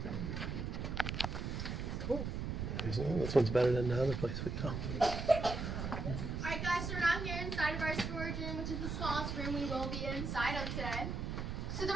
Cool. This one's better than the other place we go. Alright guys, so we're now here inside of our storage room, which is the smallest room we will be inside of today. So the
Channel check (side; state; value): right; noise; rumble, 3 dB below the sound